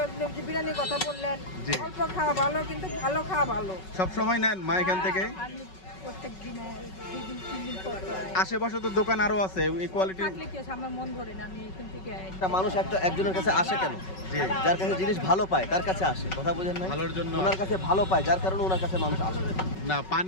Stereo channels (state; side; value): late; right; 5.3 ms